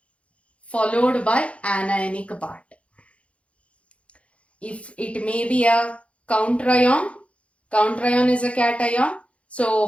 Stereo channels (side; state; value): right; late; 0.062 ms